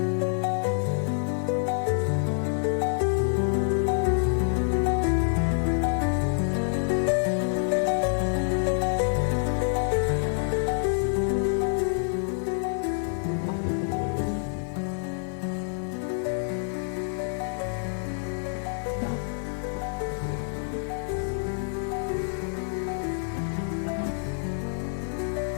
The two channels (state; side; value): silent; right; 57 dB below the other